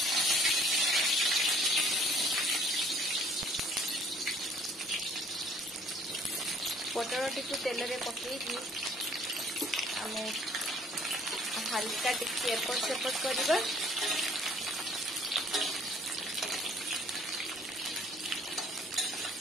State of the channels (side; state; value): both; normal; correlation 0.58